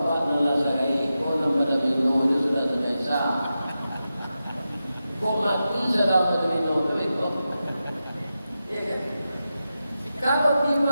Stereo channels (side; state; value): both; inverted; correlation -0.91